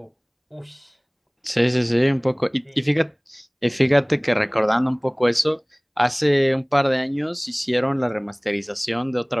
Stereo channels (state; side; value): identical; both; correlation 1.00